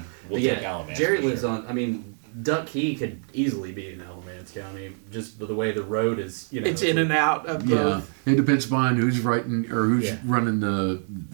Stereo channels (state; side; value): silent; left; 62 dB below the other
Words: we'll But take Alamance. Jerry for lives sure. on. Duck Key could easily be in Alamance County, just the way the road is. It's in and out of Yeah, both. it depends upon who's writing or who's running the